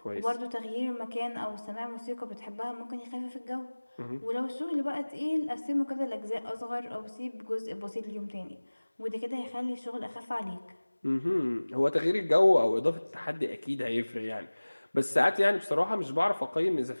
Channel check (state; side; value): inverted; both; correlation -1.00